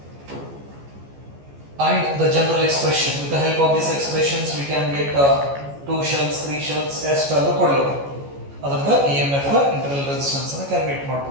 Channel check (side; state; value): left; late; 14 ms